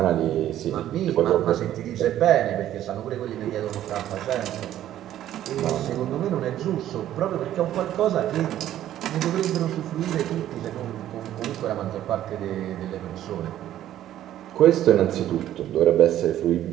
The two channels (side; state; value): left; quieter; 12.3 dB